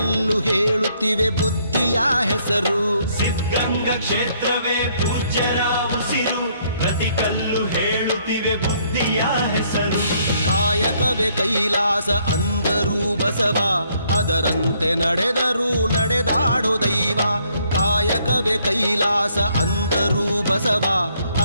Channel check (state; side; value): inverted; both; correlation -0.68